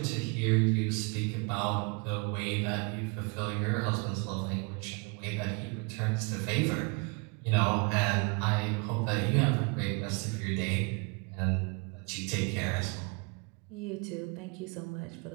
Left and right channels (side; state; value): left; quieter; 31.7 dB